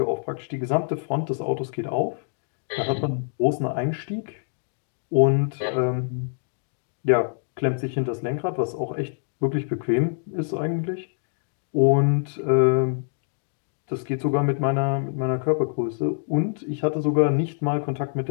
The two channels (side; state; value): right; silent; digital silence